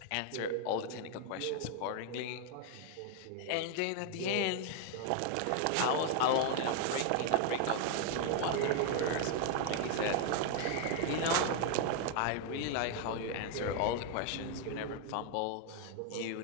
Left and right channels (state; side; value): different; both; correlation 0.00